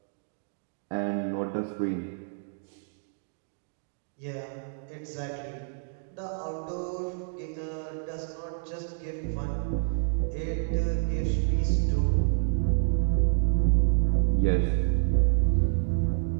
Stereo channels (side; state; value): left; silent; digital silence